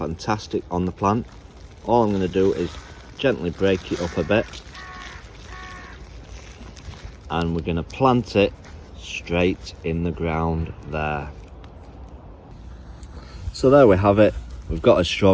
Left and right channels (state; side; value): identical; both; correlation 1.00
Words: on the plant. All I'm going to do is gently break it up a bit, and we're going to plant it straight in the ground there. So there we have it. We've got a